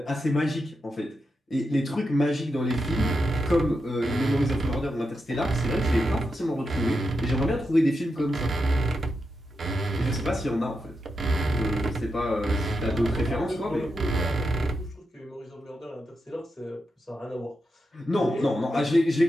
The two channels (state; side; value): normal; both; correlation 0.86